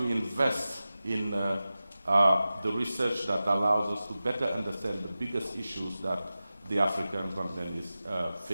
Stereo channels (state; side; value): inverted; both; correlation -0.95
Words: invest in the research that allows us to better understand the biggest issues that the African continent is